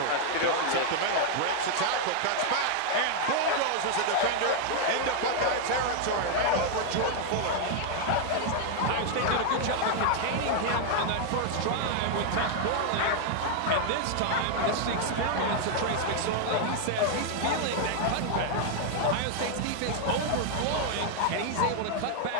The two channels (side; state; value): both; different; correlation 0.00